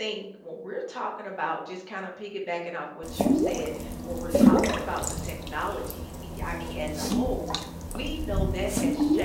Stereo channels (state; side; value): identical; both; correlation 1.00